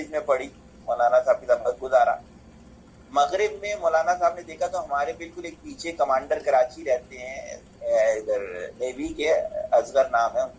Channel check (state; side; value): identical; both; correlation 1.00